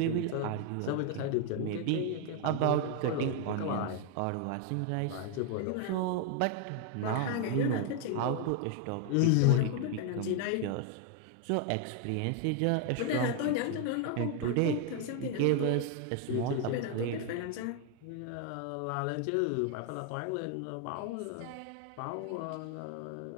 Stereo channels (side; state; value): both; different; correlation 0.01